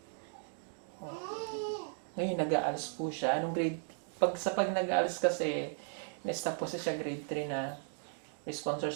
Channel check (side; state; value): left; silent; digital silence